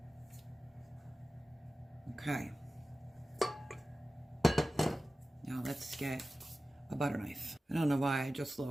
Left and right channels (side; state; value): both; normal; correlation 0.95